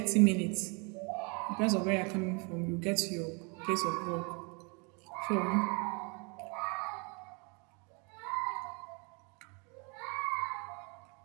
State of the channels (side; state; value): left; quieter; 32.9 dB